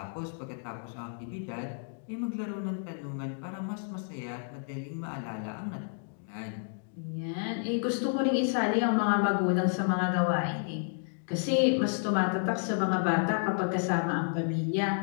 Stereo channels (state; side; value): silent; right; digital silence